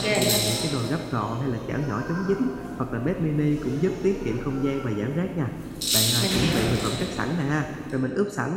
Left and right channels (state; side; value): identical; both; correlation 1.00